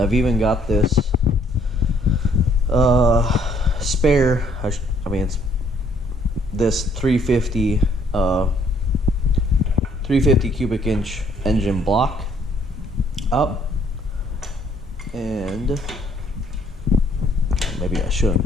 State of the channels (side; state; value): both; normal; correlation 0.64